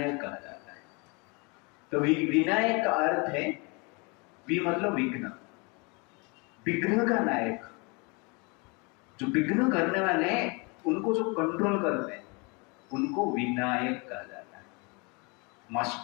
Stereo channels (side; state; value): right; quieter; 30.0 dB